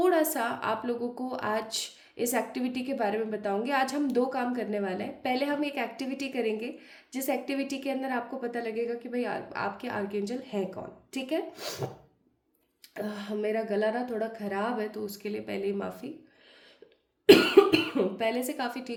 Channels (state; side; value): identical; both; correlation 1.00